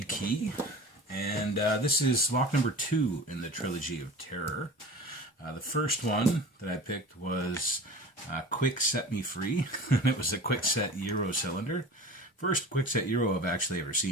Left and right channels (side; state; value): both; normal; correlation 0.37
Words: key, and this is lock number 2 in the trilogy of terror. The first one that I picked was Quick Set Me Free. It was a quick set Euro cylinder. First quick set Euro I've actually ever